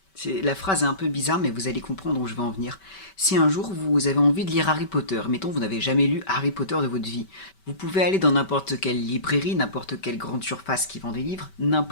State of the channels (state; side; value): late; right; 5.2 ms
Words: La phrase est un peu bizarre, mais vous allez comprendre où je vais en venir. Si un jour vous avez envie de lire Harry Potter, mettons vous n'avez jamais lu Harry Potter de votre vie, vous pouvez aller dans n'importe quelle librairie, n'importe quelle grande surface qui vend des livres,